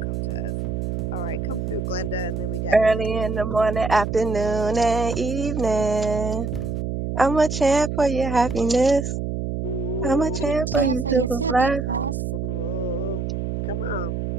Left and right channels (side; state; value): right; noise; hum, 3 dB below the sound